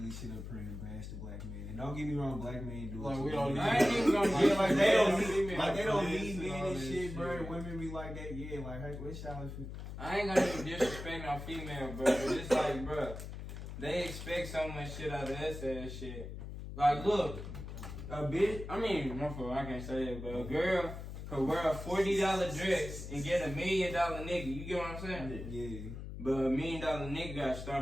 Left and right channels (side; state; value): left; noise; hum, 9 dB below the sound